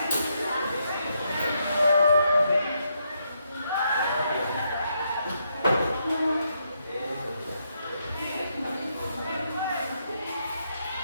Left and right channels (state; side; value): inverted; both; correlation -0.78